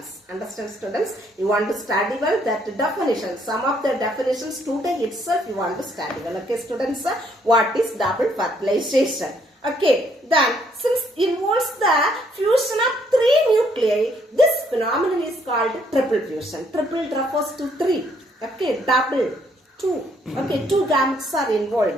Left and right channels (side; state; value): both; normal; correlation 0.68